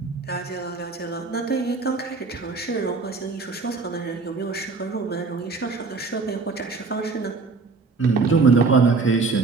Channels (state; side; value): quieter; left; 4.2 dB